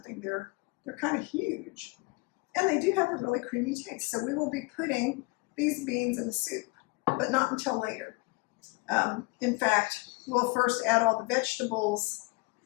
They're kind of huge. And they do have a really creamy taste. So we will be putting these beans in the soup, but not until later. In fact, we'll first add all the vegetables,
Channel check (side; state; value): right; quieter; 27.3 dB